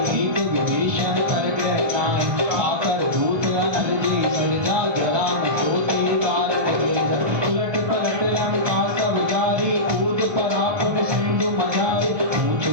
एक विभीषण कर ग्रह नाही। आकर दूत अनल जी सरिजा, जरा न सोती कारत गिरजा। उलट पलट लंका सब जारी, कूद पड़ा पुन सिंधु मझारी। पूछ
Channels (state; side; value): late; left; 1.2 ms